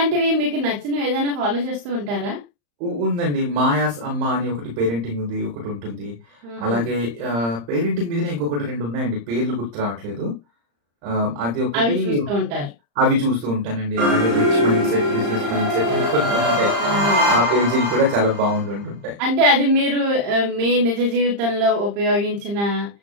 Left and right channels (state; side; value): late; left; 35 ms